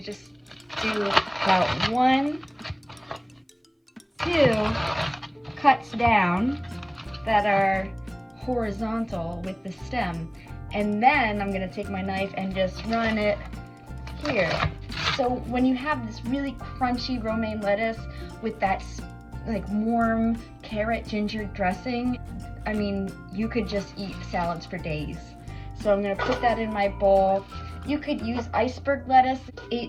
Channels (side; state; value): both; identical; correlation 1.00